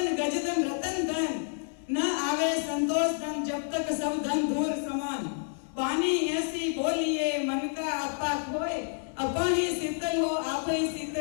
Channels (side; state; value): right; silent; 58 dB below the other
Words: गजधन रतन धन, न आवे संतोष धन, जब तक सब धन धूल समान। वाणी ऐसी बोलिए, मन का आपा खोए, अपन ही शीतल हो, आप ही